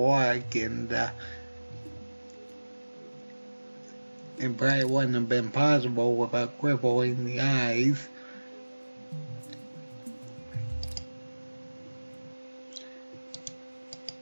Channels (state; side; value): inverted; both; correlation -1.00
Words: and it probably wouldn't have been possible without crippling the eyes.